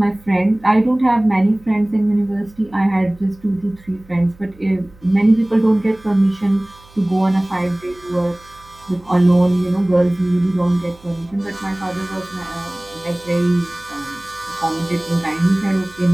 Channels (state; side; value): noise; right; hum, 26 dB below the sound